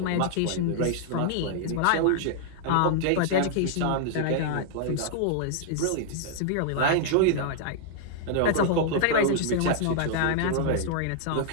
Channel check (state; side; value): different; both; correlation -0.01